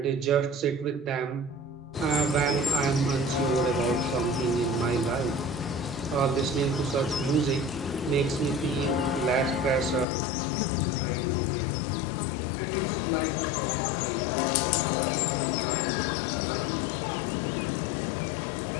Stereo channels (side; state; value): right; drops out; at 10.1 s